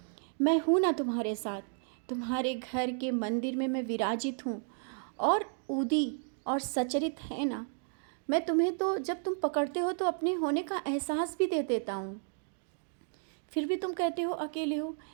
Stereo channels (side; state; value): left; silent; 56 dB below the other